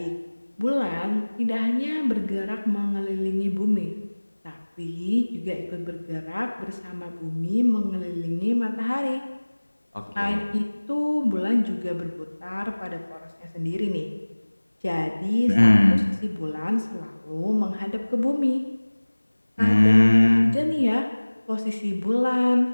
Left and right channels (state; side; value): inverted; both; correlation -1.00